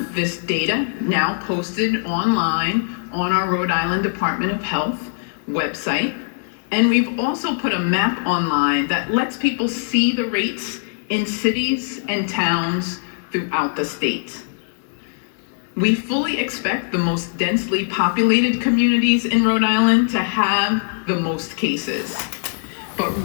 this data now posted online on our Rhode Island Department of Health website, and we've also put a map online that lets people see the rates in cities and towns throughout the state. We fully expect the most densely populated communities in Rhode Island to have the most cases. But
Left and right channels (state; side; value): silent; right; digital silence